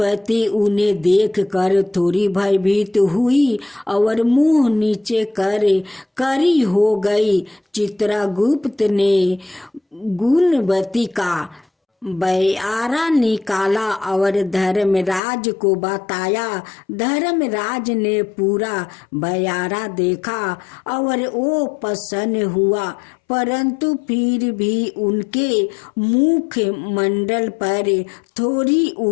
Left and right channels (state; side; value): drops out; right; at 15.2 s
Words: उन्हें देखकर थोड़ी भयभीत हुई और मुंह नीचे कर करी हो गई। चित्रगुप्त ने गुणवती का बयारा निकाला और धर्मराज को बताया। धर्मराज ने पूरा बयारा देखा और वो प्रसन्न हुआ, परंतु फिर भी उनके मुख मंडल पर थोड़ी